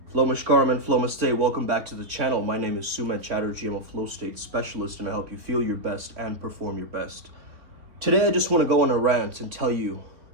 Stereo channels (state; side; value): late; left; 3.6 ms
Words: Namaskaram and Namaste. Welcome back to the channel. My name is Sumedh Chatterjee. I'm a flow state specialist and I help you feel your best and perform your best. Today I just want to go on a rant and tell you